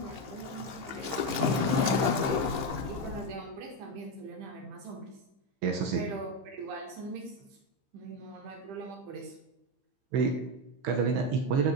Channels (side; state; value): left; late; 15 ms